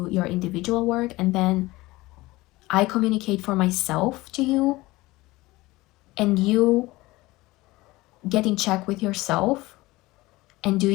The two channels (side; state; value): right; quieter; 20.0 dB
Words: your individual work, and then I communicate for myself to you, and you get in check with yourself and do